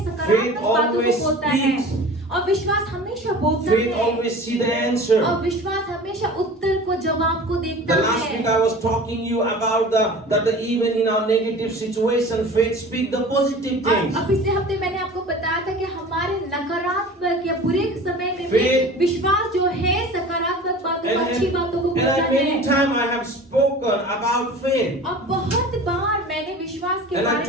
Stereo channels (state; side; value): normal; both; correlation 0.39